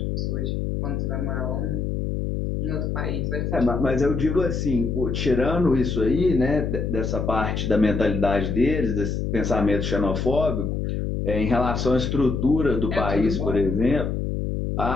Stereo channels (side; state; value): left; noise; hum, 1 dB below the sound